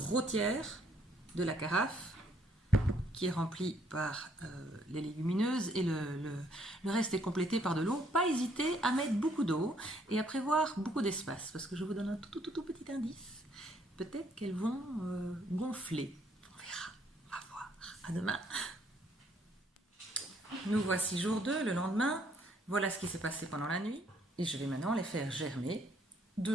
tiers de la carafe qui est rempli par les légumineuses et le reste est complété par de l'eau. Pas hésiter à mettre beaucoup d'eau et à prévoir beaucoup d'espace parce que je vous donne un tout petit indice. Peut-être qu'elles vont gonfler. On verra, on va voir. À demain. Nous voici jour 2, le lendemain. Voilà ce qui s'est passé pendant la nuit. Et je vais maintenant les faire germer.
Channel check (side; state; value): both; normal; correlation 0.67